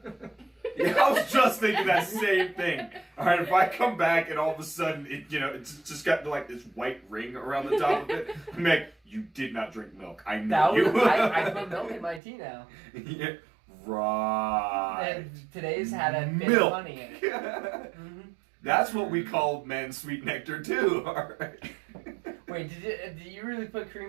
Yeah, I was just thinking that same thing. All right, if I come back and all of a sudden it's just got like this white ring around the top of it, I'm like, you did not drink milk. I know That you. was, I put milk in my tea now. Yeah, right. And today's had a bit Milk. of honey in it. Mm-hmm. That's what we call men's sweet nectar too. All right. Wait, did you really put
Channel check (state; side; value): drops out; left; at 12.2 s